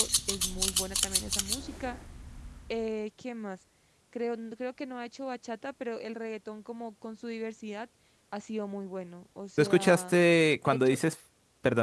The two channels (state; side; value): identical; both; correlation 1.00